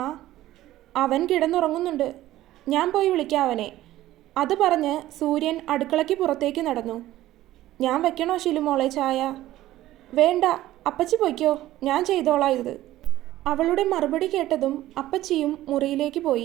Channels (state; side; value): quieter; left; 14.9 dB